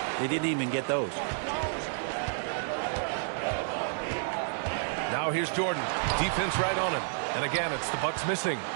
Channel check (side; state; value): left; silent; digital silence